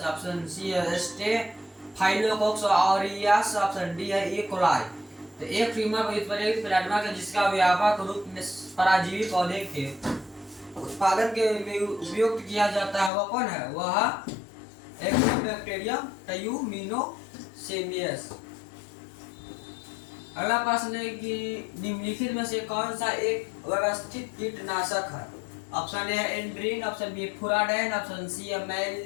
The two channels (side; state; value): right; drops out; at 13.1 s